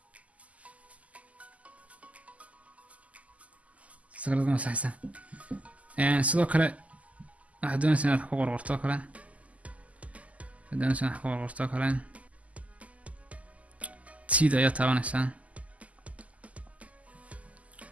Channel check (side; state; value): left; late; 0.070 ms